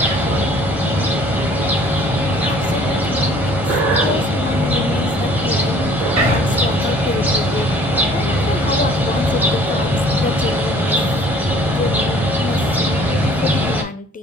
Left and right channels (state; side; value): normal; both; correlation 0.54